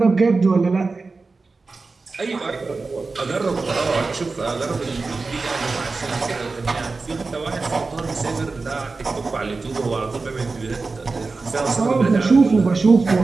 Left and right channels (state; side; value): quieter; left; 4.0 dB